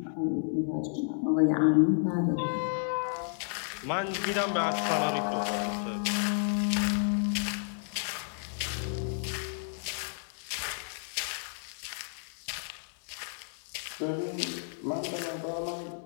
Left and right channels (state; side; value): silent; right; digital silence